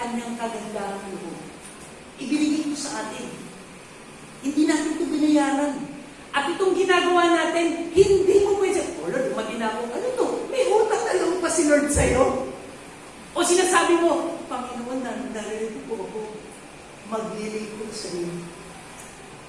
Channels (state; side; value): identical; both; correlation 1.00